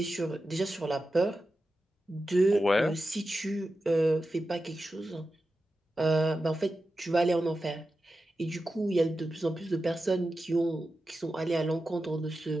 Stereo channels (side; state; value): both; normal; correlation 0.92